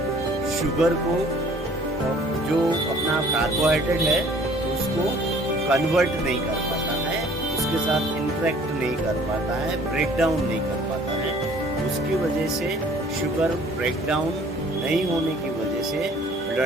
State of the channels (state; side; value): normal; both; correlation 0.54